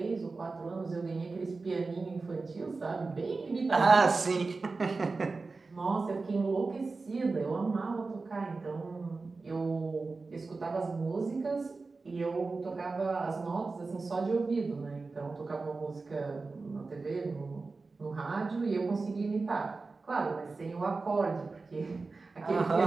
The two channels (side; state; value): left; quieter; 3.9 dB